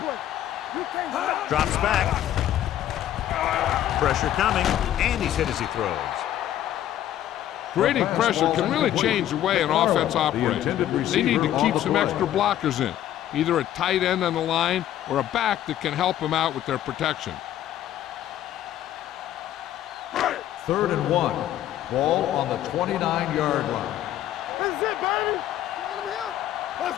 Drops back. Pressure coming, and he's hit as he throws. Creating pressure can really change the way an offense operates. They need to keep some extra blockers in, either a tight end on the line or a back that can help them out with their protection. 3rd and 1. Ball on the 29-yard line. This is it, baby. Let's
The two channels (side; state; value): right; quieter; 12.1 dB